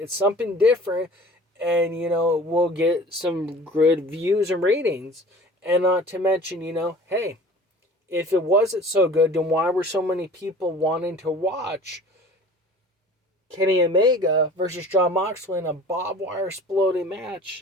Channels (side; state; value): both; normal; correlation 0.44